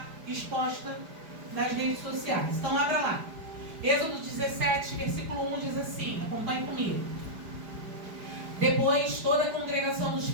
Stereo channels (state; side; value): late; left; 4.9 ms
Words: exposta nas redes sociais. Então, abra lá. Êxodo 17, versículo 1 diz assim, acompanhe comigo. Depois, toda a congregação dos